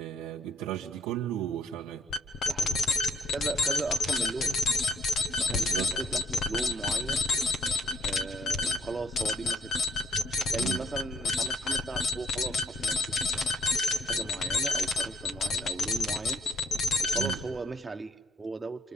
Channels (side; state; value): both; normal; correlation 0.64